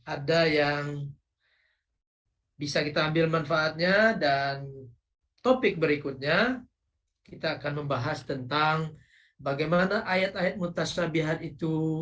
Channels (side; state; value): both; identical; correlation 1.00